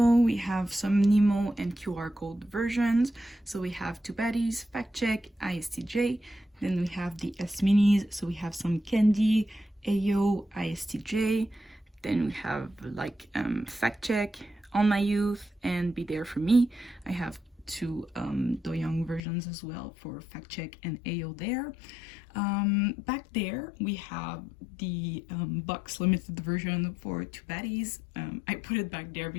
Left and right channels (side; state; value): right; drops out; at 19.2 s